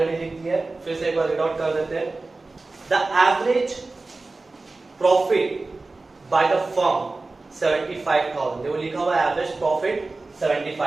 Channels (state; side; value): quieter; left; 3.4 dB